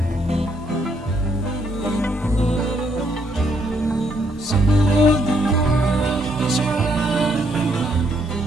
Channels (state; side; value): normal; both; correlation 0.72